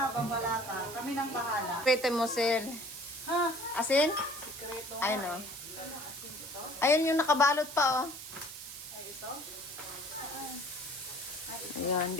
bambala ka. Kami nang bahala. Pwede mo, Sel. Ha? Asin? Sikreto. Ayun, oh. Ayun yung nakabalot pa, oh. Ay, ito? Ayun,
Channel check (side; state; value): right; noise; hiss, 11 dB below the sound